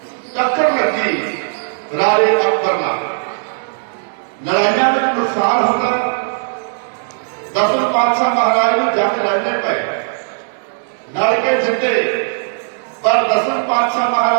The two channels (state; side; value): silent; left; 68 dB below the other